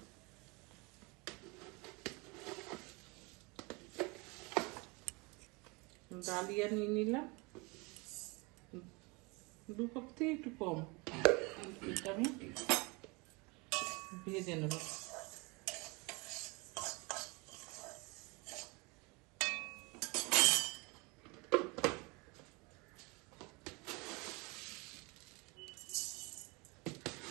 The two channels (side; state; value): left; quieter; 27.7 dB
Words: ডালিয়া নিয়ে নিলাম 2 কাপ থেকে একটু কম। এটা আমি ভেজে নেব।